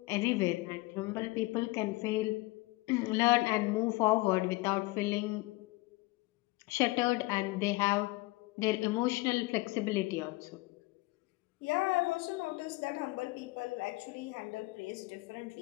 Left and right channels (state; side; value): quieter; right; 22.1 dB